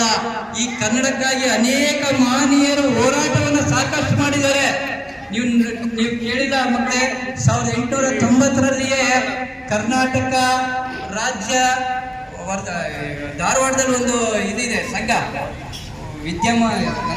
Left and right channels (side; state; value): both; identical; correlation 1.00